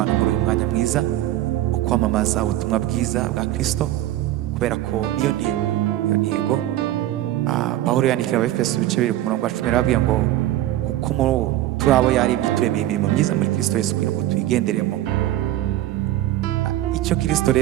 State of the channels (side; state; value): left; quieter; 14.2 dB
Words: muri uyu mwanya mwiza wo kwamamaza ubutumwa bwiza bwa Kristo, kubera ko niyo ntego. Pawulo yandikira Abefeso ibice 2 ku murongo wa 10 arababwira ngo kuko turi abo yaremye turemeye imirimo myiza muri Kristo Yesu, kugira ngo tuyigenderemo. Icyo Kristo